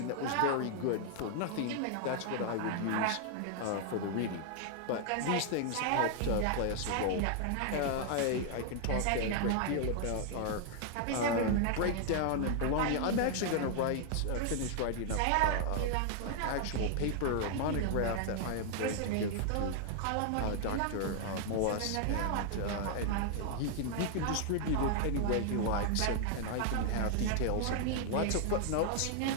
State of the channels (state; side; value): different; both; correlation 0.00